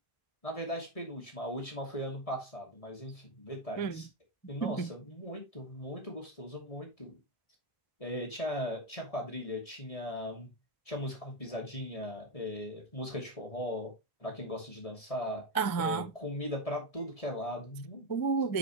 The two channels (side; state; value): right; late; 1.7 ms